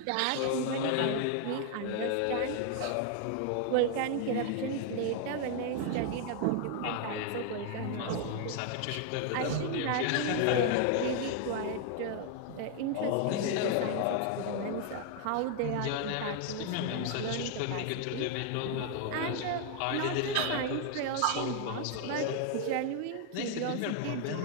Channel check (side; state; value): both; different; correlation 0.00